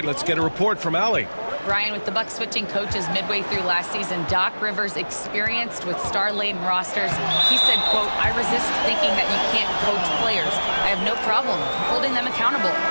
let's get a report from Allie. Brian, with the Bucks switching coaches midway through last season, Doc Rivers, experienced with star-laden rosters, he said, quote, "I resist thinking that you can't coach players. I have no problem holding them accountable.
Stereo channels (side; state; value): both; inverted; correlation -1.00